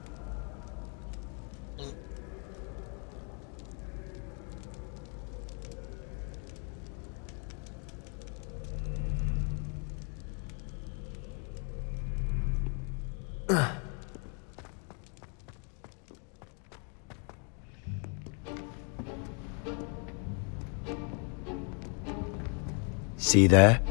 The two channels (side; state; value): right; quieter; 39.6 dB